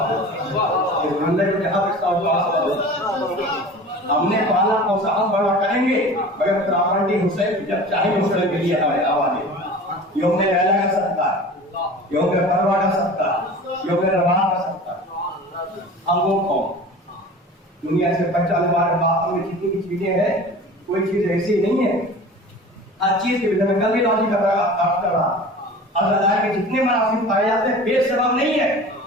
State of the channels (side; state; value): both; normal; correlation 0.39